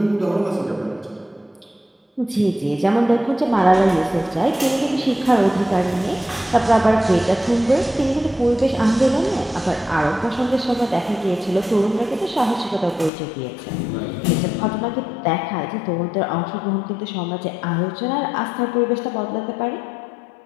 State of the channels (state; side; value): drops out; right; at 13.1 s